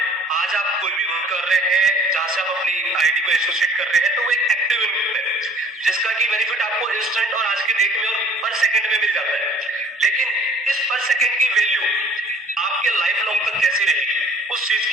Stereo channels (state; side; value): normal; both; correlation 0.52